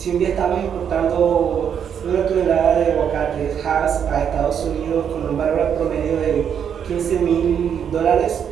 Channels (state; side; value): quieter; left; 8.1 dB